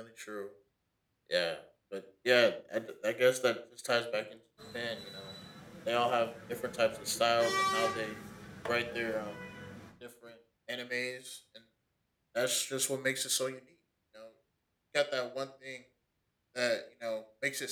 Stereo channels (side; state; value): both; identical; correlation 1.00